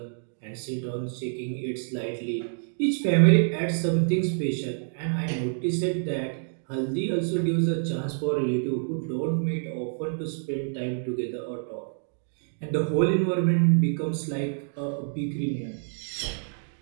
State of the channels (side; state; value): left; silent; digital silence